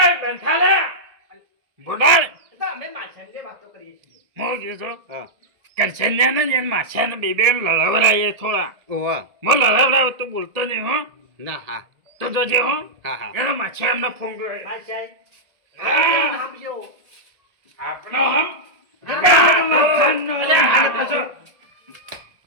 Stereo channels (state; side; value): late; left; 1.7 ms